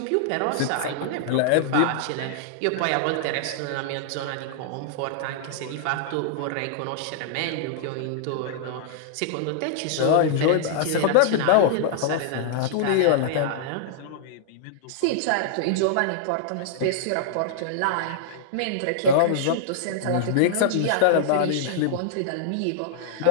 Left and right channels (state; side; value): different; both; correlation -0.01